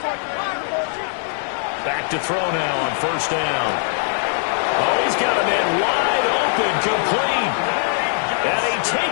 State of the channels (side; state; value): right; silent; 60 dB below the other